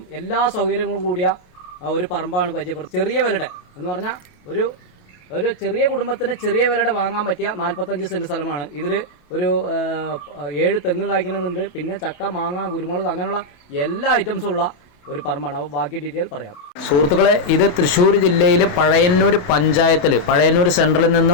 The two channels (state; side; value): late; right; 28 ms